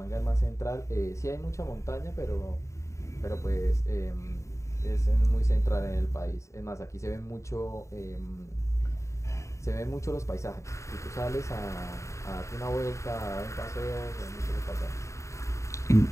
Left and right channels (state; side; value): late; right; 0.14 ms